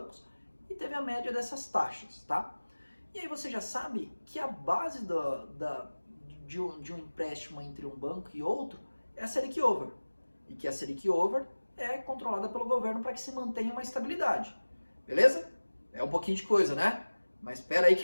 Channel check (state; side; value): inverted; both; correlation -1.00